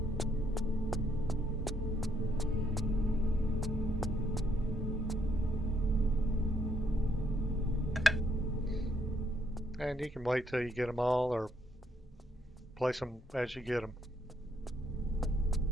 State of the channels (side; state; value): both; normal; correlation 0.72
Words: And you can wait till you get them all, or place them as you get them.